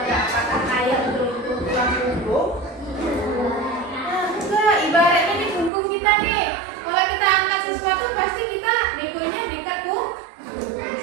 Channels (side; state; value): left; drops out; at 5.7 s